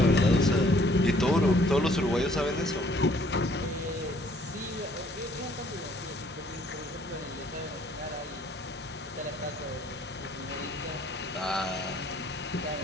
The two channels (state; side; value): normal; both; correlation 0.61